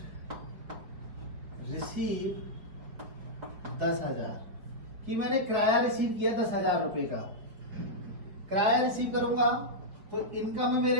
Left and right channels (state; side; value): late; left; 5.1 ms